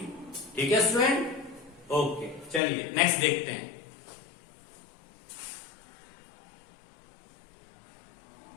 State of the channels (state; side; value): drops out; right; at 2.6 s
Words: ठीक है स्टूडेंट, ओके चलिए नेक्स्ट देखते हैं।